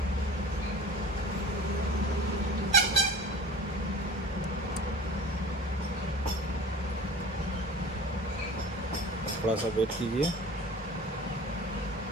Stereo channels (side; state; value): both; normal; correlation 0.39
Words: थोड़ा सा वेट कीजिए।